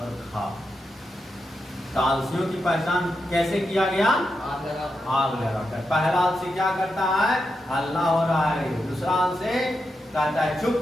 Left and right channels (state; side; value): normal; both; correlation 0.86